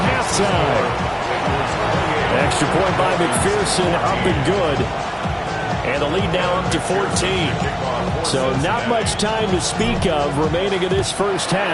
halftime. Extra point by McPherson, up and good. And the lead now up to 14. So not much time to speak of remaining in this first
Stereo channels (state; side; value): identical; both; correlation 1.00